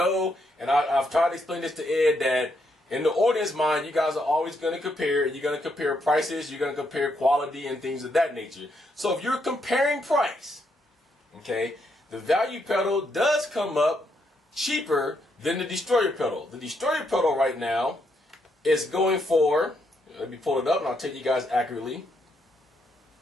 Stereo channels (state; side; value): normal; both; correlation 0.77